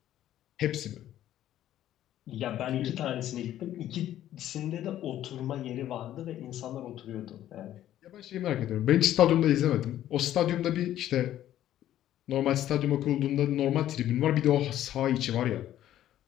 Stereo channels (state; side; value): quieter; right; 12.4 dB